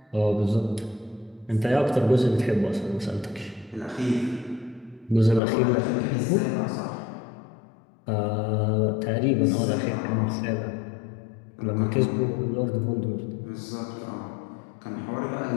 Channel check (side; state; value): right; drops out; at 5.4 s